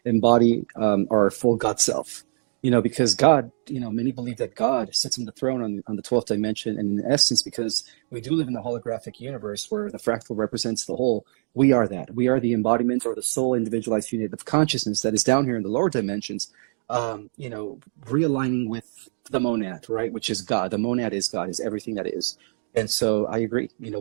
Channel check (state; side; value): silent; left; digital silence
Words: embody our full God self. Because God, many believe that God sits on the throne on the 12th dimension. And in essence, because we do live in the holographic universe where the fractal represents the whole, we are that. We are the embodiment or the soul individualized unit of consciousness that is down here in the lower dimensions, realigning with the monad, right? Which is God. The monad is God, is everything that is. And so I agree.